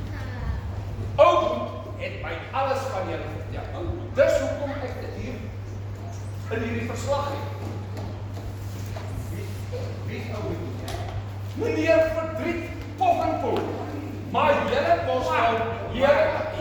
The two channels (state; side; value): identical; both; correlation 1.00